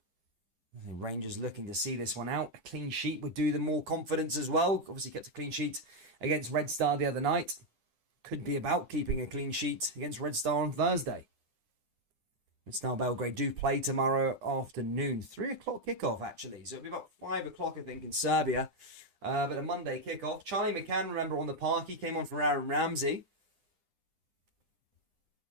Rangers looking to see this one out. A clean sheet would do them more confidence as well. Obviously kept a clean sheet against Red Star the other night. Could be about keeping a clean sheet against Red Star on Thursday. Red Star Belgrade do play tomorrow afternoon. 3 o'clock kickoff, actually. So it'll be about 5 o'clock, I think, in Serbia. But a Monday kickoff. Charlie McCann, remember, on the park. He came on for Aaron Ramsey.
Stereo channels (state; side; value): late; left; 10 ms